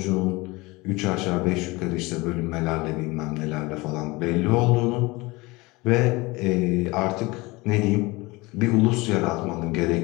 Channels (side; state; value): right; quieter; 23.2 dB